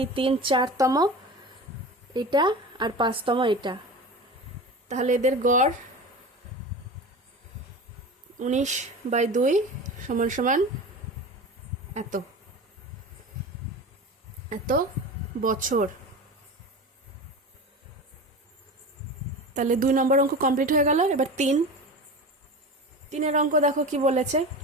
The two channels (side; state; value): both; normal; correlation 0.30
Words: 3 4তম এটা আর 5তম এটা। তাহলে এদের গড় 19/2 সমান সমান এত এত বছর। তাহলে 2 নম্বর অঙ্ক কমপ্লিট হয়ে গেল। এবার 3-এর অঙ্ক দেখো কি বলেছে।